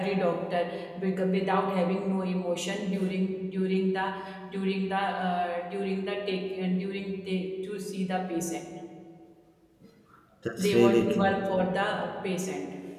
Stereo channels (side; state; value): both; identical; correlation 1.00